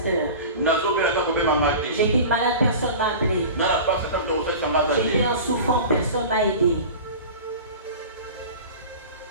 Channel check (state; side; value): inverted; both; correlation -0.35